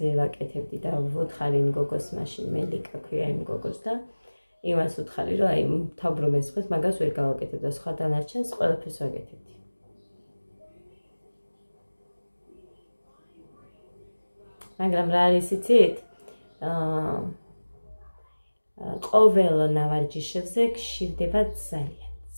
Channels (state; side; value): inverted; both; correlation -1.00